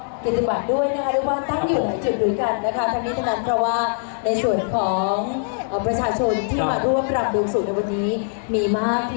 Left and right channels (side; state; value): right; silent; digital silence